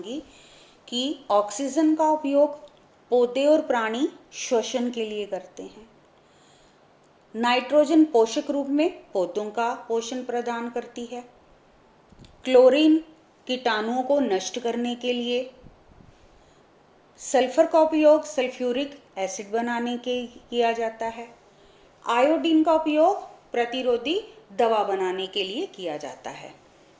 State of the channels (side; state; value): both; identical; correlation 1.00